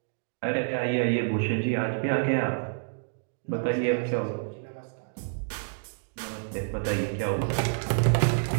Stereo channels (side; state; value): left; silent; digital silence